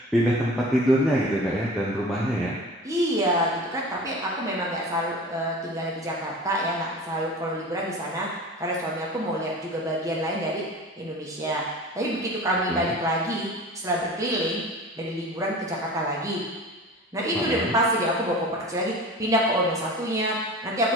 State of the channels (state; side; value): normal; both; correlation 0.37